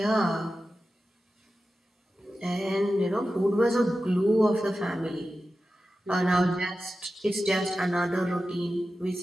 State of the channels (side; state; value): both; normal; correlation 0.93